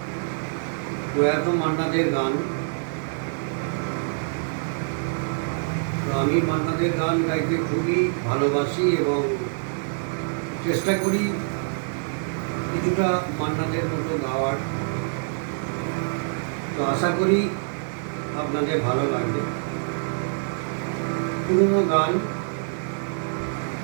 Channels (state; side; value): silent; left; 61 dB below the other